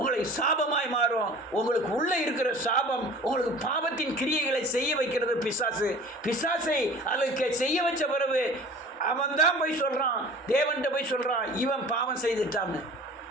சாபமாய் மாறும். உங்களுக்கு உள்ள இருக்கிற சாபம் உங்களுக்கு பாவத்தின் கிரியைகளை செய்ய வைக்கிறது பிசாசு. பிசாசை அதுக்கு செய்ய வச்ச பிறகு அவன் தான் போய் சொல்றான், தேவன்கிட்ட போய் சொல்றான், இவன் பாவம் செய்துட்டான்னு.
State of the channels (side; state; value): both; normal; correlation 0.43